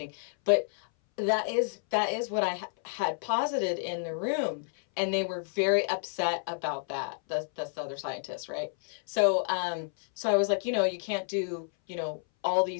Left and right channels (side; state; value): right; silent; 58 dB below the other